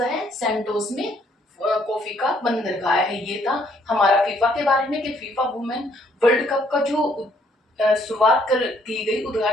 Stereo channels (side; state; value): both; normal; correlation 0.67